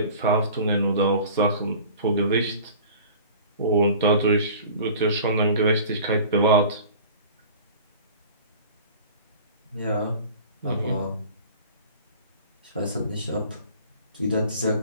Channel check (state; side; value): inverted; both; correlation -0.43